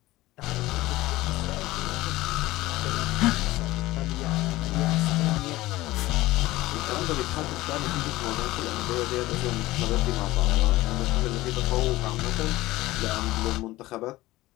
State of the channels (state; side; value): quieter; right; 18.1 dB